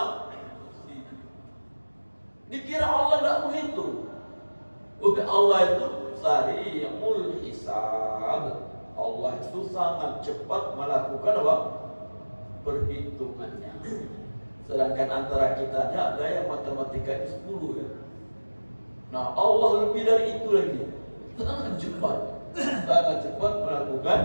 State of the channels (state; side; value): inverted; both; correlation -1.00